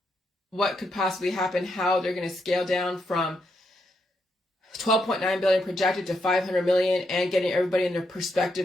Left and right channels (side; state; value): both; normal; correlation 0.80